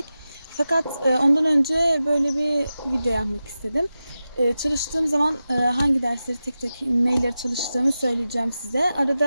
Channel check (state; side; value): inverted; both; correlation -0.93